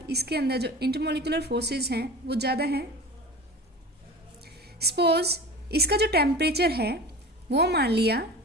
इसके अंदर जो इंटरमोलिकुलर फोर्सेस हैं वो ज़्यादा हैं। सपोज इसका जो टेम्परेचर है वो मान लिया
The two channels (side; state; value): both; normal; correlation 0.35